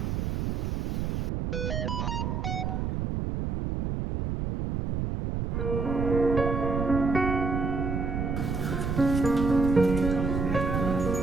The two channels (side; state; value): right; noise; rumble, 1 dB below the sound